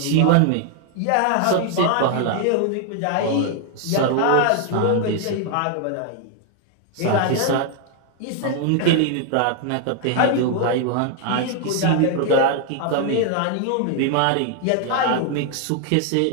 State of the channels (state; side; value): different; both; correlation 0.00